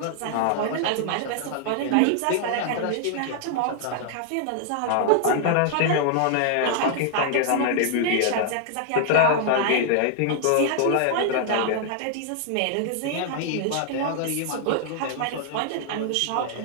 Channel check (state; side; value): different; both; correlation 0.00